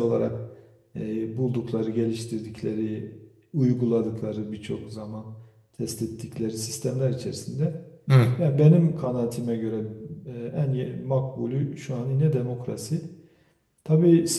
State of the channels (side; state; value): both; identical; correlation 1.00